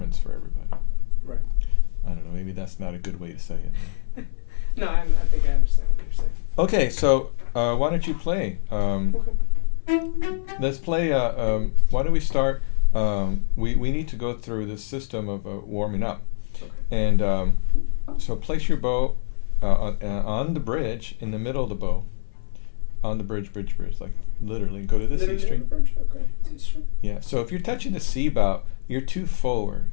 for everybody. Right. I don't know. Maybe that's not a good way to say it. No, I think I understand what you're saying. Okay, so why don't you play? Okay. Let's play. Why don't we start? We need to go through this system of warming up, Okay. and so place your bow on the bridge in the middle of the bow, on the bridge, like literally. Go to the C string. Bridge? Okay. C string. Yeah. So if you're touching the C bow, you're too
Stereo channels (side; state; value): right; silent; 57 dB below the other